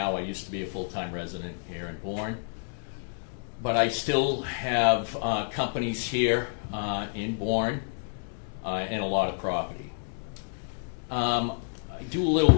I used to be a full-time resident here in Bourne. But I still have companies here in Bourne and a lot of property. I do a little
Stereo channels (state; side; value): silent; right; digital silence